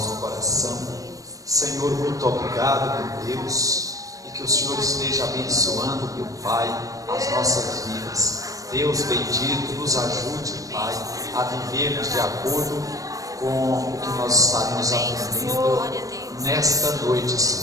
coração. Senhor, muito obrigado, meu Deus, e que o Senhor esteja abençoando, meu Pai, as nossas vidas. Deus bendito, nos ajude, Pai, a vivermos de acordo com o que nós estaremos aprendendo nesta noite,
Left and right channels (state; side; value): late; left; 0.16 ms